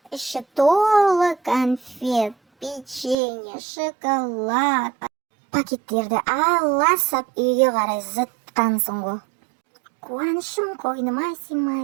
іші толы конфет, печенье, шоколад. Пакеттерді аласап үйге қарай зытқансың ғой. Қуанышым қойныма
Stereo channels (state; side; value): drops out; left; at 3.2 s